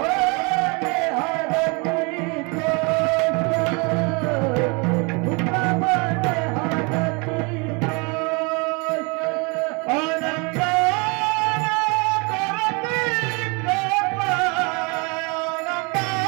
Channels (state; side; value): quieter; left; 30.7 dB